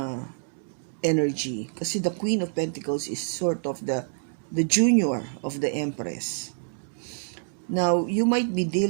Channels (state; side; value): silent; left; digital silence